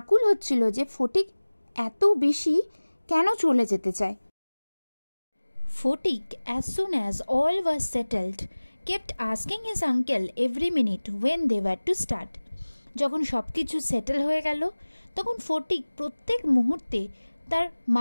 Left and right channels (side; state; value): both; inverted; correlation -1.00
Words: হচ্ছিল যে ফটিক এত বেশি কেন চলে যেতে চায়। Fotik, as soon as all was settled, kept asking his uncle every minute when they were to start. যখন সব কিছু সেটেল হয়ে গেল তখন ফটিক প্রত্যেক মুহূর্তে তার